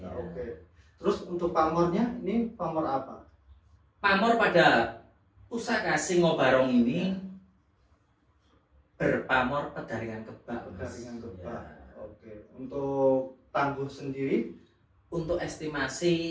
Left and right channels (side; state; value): both; identical; correlation 1.00